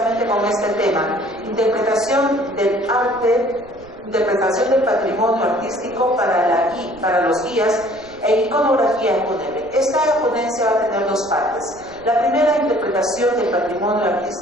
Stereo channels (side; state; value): right; noise; rumble, 24 dB below the sound